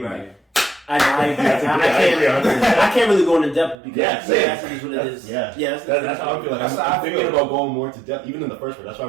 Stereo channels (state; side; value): drops out; left; at 3.8 s